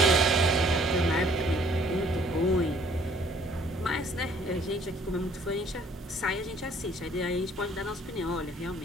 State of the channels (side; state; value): both; normal; correlation 0.59